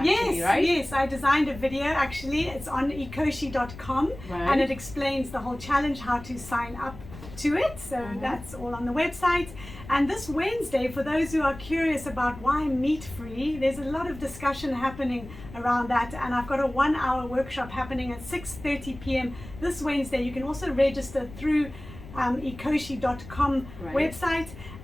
right? Yes, I designed a video actually. It's on ecoshe.com and it explains the whole challenge, how to sign up to it. So that's all on the website. And this Wednesday, for those who are curious about why meat-free, there's a lot of discussion happening around that. And I've got a 1-hour workshop happening at 6:30 p.m. this Wednesday. You can also register through ecoshe.com website.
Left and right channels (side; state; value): left; noise; rumble, 15 dB below the sound